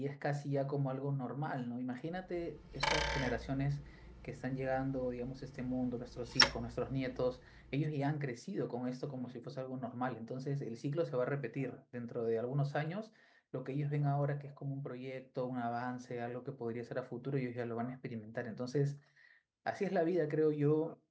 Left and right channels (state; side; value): identical; both; correlation 1.00